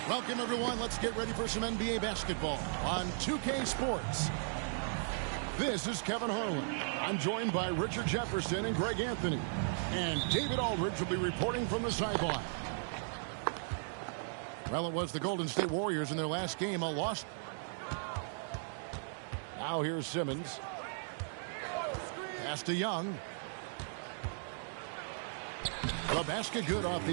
Welcome, everyone. Let's get ready for some NBA basketball on 2K Sports. This is Kevin Harlan. I'm joined by Richard Jefferson and Greg Anthony. And David Aldridge will be reporting from the sideline. Well, it was the Golden State Warriors in their last game, a loss. Now here's Simmons. Pass to Young. The basket good off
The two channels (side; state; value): left; silent; digital silence